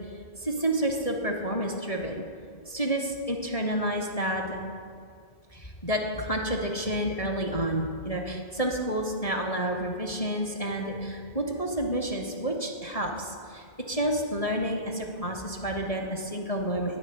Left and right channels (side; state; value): right; late; 1.7 ms